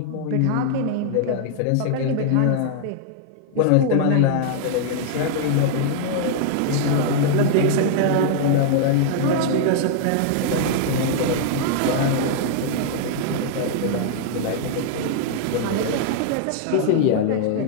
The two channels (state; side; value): different; both; correlation -0.01